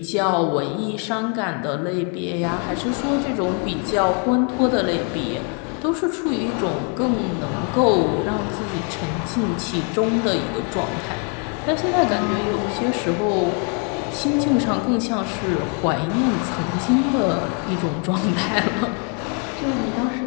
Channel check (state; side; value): quieter; right; 38.5 dB